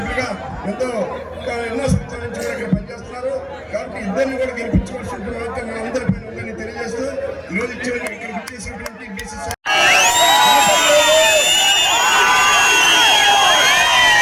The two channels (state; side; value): identical; both; correlation 1.00